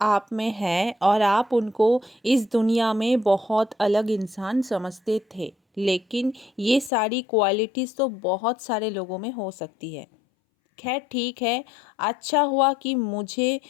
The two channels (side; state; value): right; drops out; at 6.9 s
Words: आप में हैं और आप उनको इस दुनिया में बहुत अलग इंसान समझते थे, लेकिन ये सारी क्वालिटीज़ तो बहुत सारे लोगों में हो सकती है। खैर ठीक है, अच्छा हुआ कि मुझे